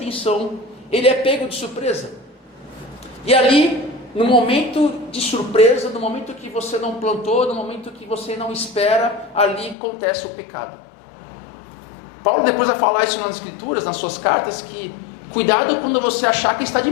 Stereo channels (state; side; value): drops out; right; at 9.8 s